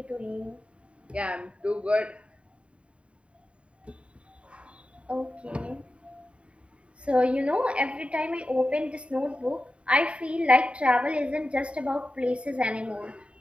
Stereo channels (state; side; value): late; left; 0.060 ms